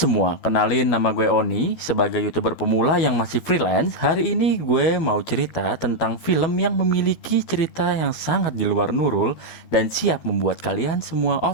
kenalin nama gue Oni. Sebagai YouTuber pemula yang masih freelance, hari ini gue mau cerita tentang film yang memiliki cerita yang sangat di luar nurul dan siap membuat kalian semua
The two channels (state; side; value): late; right; 12 ms